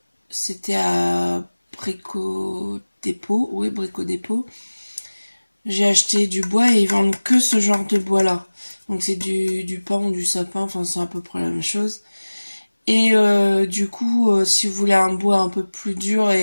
c'était à Brico Dépôt. Oui, Brico Dépôt. J'ai acheté du bois et ils vendent que ce genre de bois là. Donc c'est du pin ou du sapin, enfin c'est à peu près la même chose. Et du coup si vous voulez un bois un peu plus dur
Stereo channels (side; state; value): both; inverted; correlation -1.00